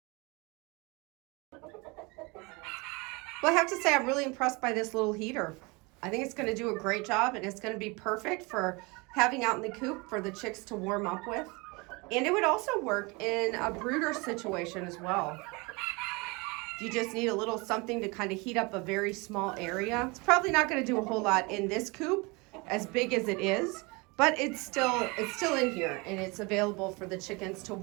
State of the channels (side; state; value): left; quieter; 27.1 dB